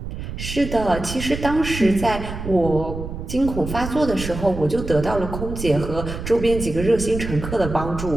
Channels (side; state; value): right; noise; rumble, 7 dB below the sound